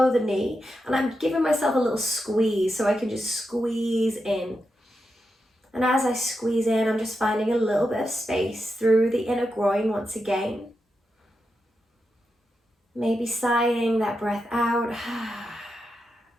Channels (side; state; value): both; normal; correlation 0.87